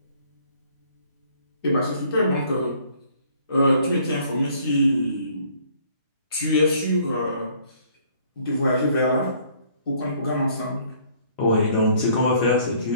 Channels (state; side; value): inverted; both; correlation -0.60